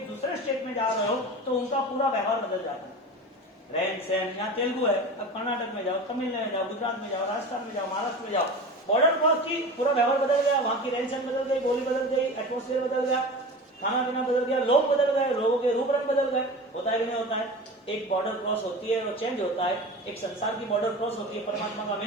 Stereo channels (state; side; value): normal; both; correlation 0.32